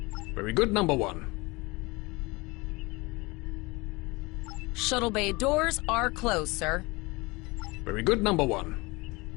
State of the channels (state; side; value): quieter; right; 24.5 dB